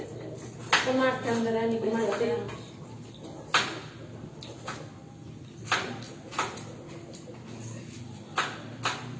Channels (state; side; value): identical; both; correlation 1.00